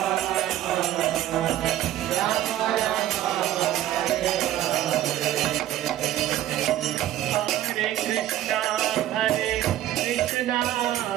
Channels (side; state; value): left; quieter; 13.2 dB